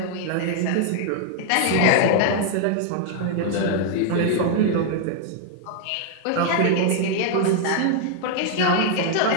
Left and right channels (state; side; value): different; both; correlation 0.00